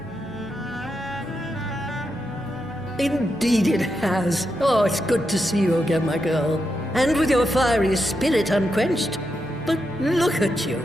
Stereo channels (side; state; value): right; noise; hum, 22 dB below the sound